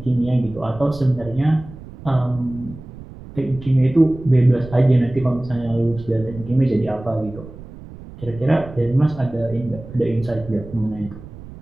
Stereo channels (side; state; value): right; noise; rumble, 16 dB below the sound